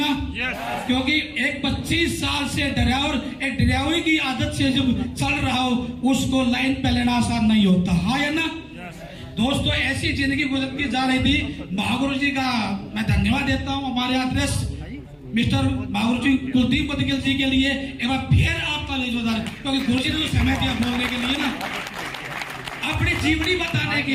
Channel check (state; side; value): identical; both; correlation 1.00